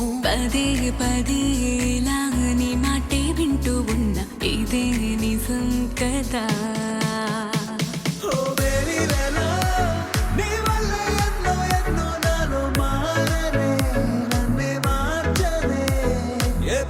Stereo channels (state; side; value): identical; both; correlation 1.00